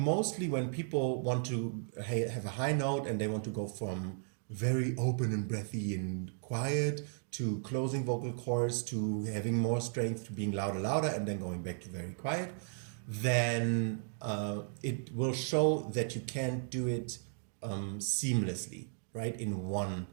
when people want to have a high note and they want to go from very open and breathy and quiet to closing vocal cords to having more strength to being louder and then going back to very quiet, then it will show that you can't do it seamlessly, right, in one.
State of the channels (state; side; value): silent; left; digital silence